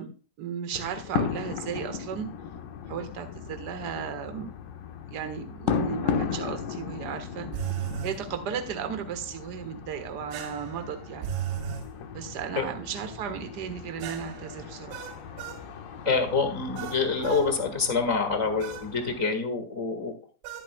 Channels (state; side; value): late; left; 3.9 ms